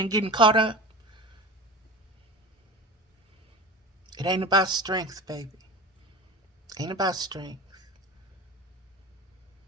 getting caught up? It ain't about strength, baby. Ain't about strength.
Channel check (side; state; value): both; normal; correlation 0.31